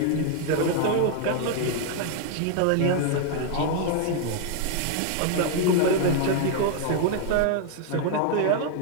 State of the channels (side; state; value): both; different; correlation 0.00